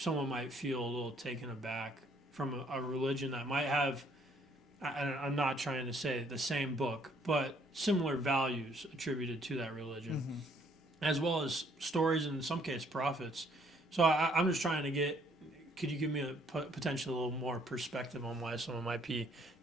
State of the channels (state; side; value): normal; both; correlation 0.64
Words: might feel a little taken aback from a religion that might have, I'm not trying to say the same book, but similar values attributed to that religion, as well as stories, and in some cases prophets. So I'm just trying to could you give me a potentially a little more perspective on why someone might be